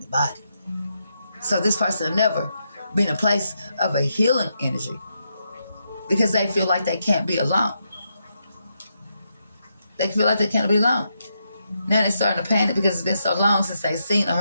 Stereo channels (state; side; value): inverted; both; correlation -0.82